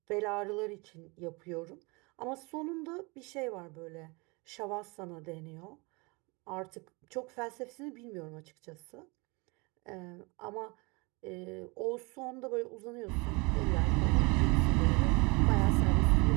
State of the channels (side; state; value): left; quieter; 27.8 dB